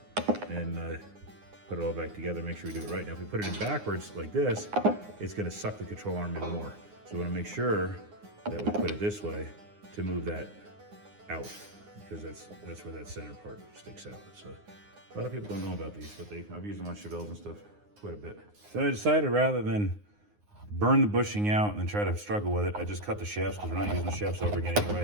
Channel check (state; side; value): late; left; 9.7 ms